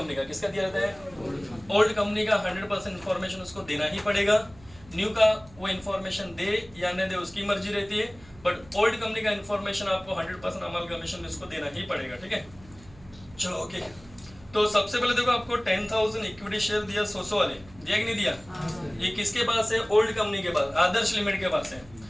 का। किसका दिया रहता है? ओल्ड कंपनी का 100% इन्फॉर्मेशन उसको देना ही पड़ेगा। न्यू का वो इन्फॉर्मेशन दे या न दे उसकी मर्जी रहती है, बट ओल्ड कंपनी का इन्फॉर्मेशन आपको 100% अमलगमेशन में उसको देना ही पड़ेगा, ठीक है। चलो ओके, तो सबसे पहले देखो आपको 10,000 इक्विटी शेयर दिया 100 वाले, दिया कि नहीं दिया? ये किसके पास है? ओल्ड कंपनी के पास, आदर्श लिमिट के पास है।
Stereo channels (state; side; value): noise; right; hum, 23 dB below the sound